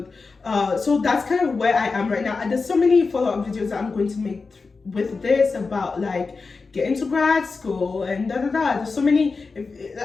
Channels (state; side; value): quieter; right; 4.4 dB